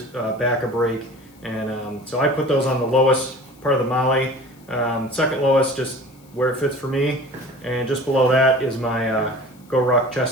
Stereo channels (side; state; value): left; noise; hiss, 29 dB below the sound